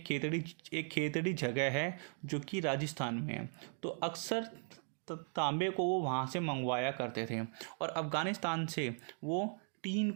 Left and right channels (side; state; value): left; silent; 52 dB below the other